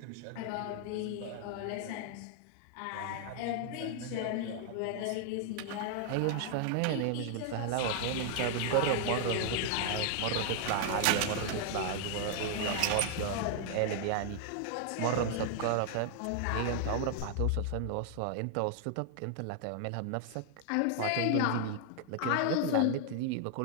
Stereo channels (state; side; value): different; both; correlation 0.00